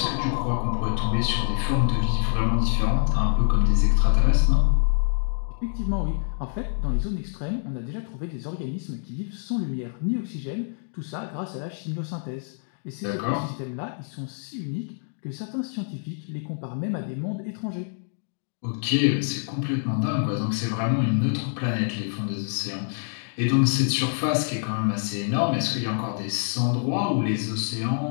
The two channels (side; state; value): right; silent; digital silence